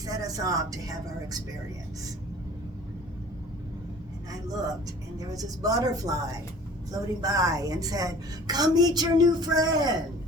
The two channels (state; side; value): normal; both; correlation 0.47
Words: us off to have our experience. And I looked, and there was this butterfly floating by and said, "Come meet your new friend."